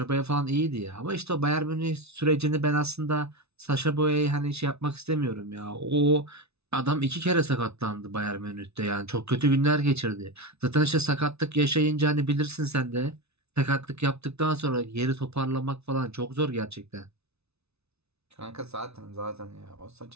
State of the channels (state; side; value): late; left; 0.80 ms